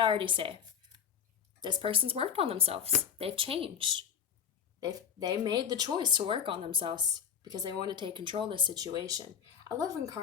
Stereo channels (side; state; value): right; quieter; 7.8 dB